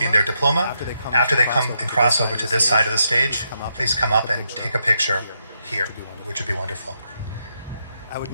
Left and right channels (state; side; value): inverted; both; correlation -0.80